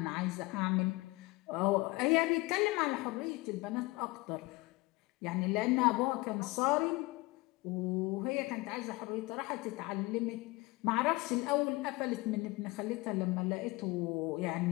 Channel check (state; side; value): quieter; right; 22.7 dB